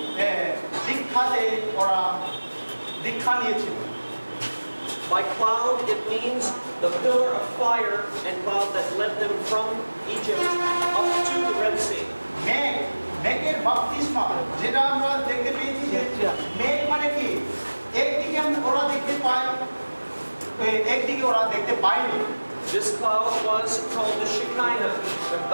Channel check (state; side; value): inverted; both; correlation -1.00